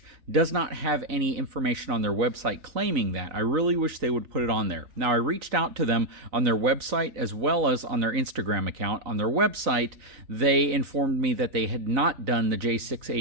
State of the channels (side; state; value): left; late; 4.0 ms